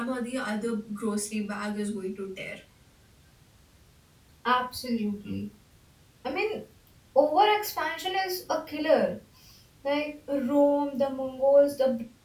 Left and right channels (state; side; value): identical; both; correlation 1.00